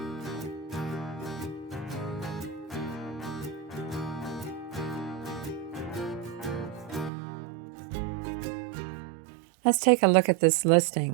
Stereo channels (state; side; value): drops out; left; at 7.1 s